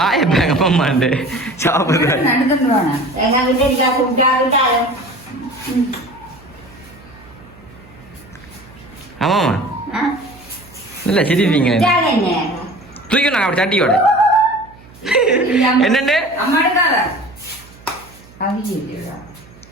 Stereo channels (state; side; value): noise; right; hum, 24 dB below the sound